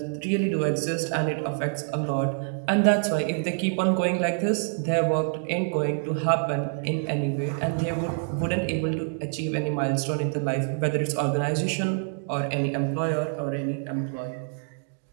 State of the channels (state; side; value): silent; left; 60 dB below the other